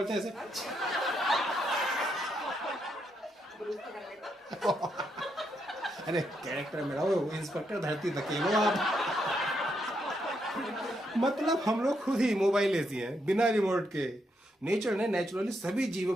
हैं ऐसे। अरे कैरेक्टर मेरा वो इंस्पेक्टर धरती धकेलो आप। मतलब हम लोग खुद ही मोबाइल ऐसी हैं बिना रिमोट के। नेचर ने नेचुरली सभी जीव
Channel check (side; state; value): both; normal; correlation 0.79